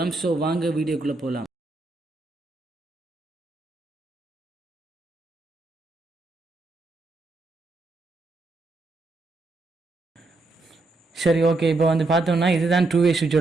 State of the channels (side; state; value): left; quieter; 3.3 dB